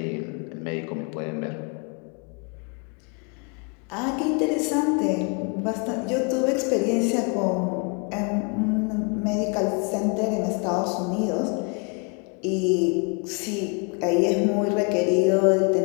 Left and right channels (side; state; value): right; quieter; 34.7 dB